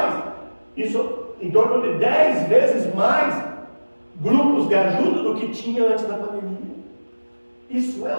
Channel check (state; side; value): inverted; both; correlation -1.00